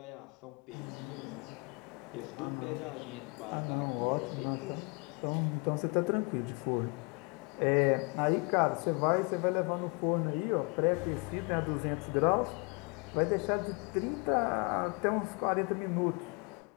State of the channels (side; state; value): right; quieter; 32.0 dB